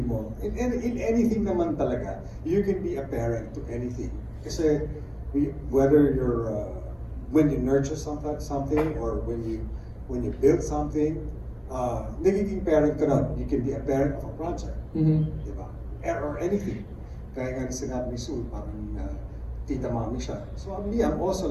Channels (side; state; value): both; identical; correlation 1.00